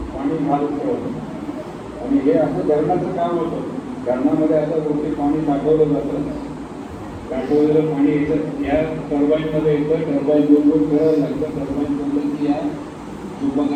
पाणी घालत आणि हे असं धरणाचं काम होतं. धरणामध्ये आता गोष्टी पाणी साठवलं जातं साठवलेलं पाणी येतं या टर्बाईनमध्ये येतं टर्बाईन दोन फिरावं लागतं टर्बाईन बोललं की या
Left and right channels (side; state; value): both; identical; correlation 1.00